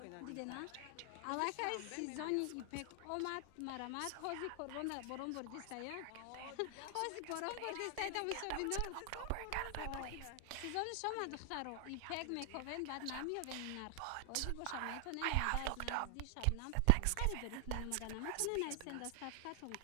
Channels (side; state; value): both; different; correlation 0.00